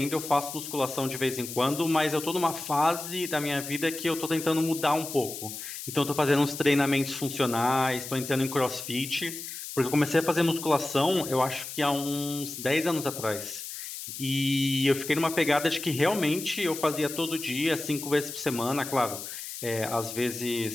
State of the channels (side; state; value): left; noise; hiss, 9 dB below the sound